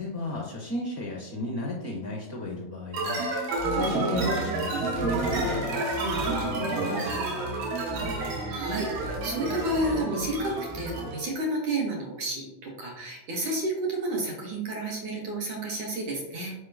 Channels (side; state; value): left; late; 9.8 ms